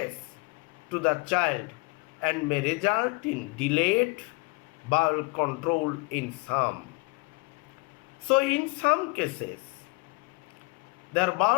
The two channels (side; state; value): right; quieter; 28.3 dB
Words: to the child, and may result in delayed bowel control in some. So in some cases, their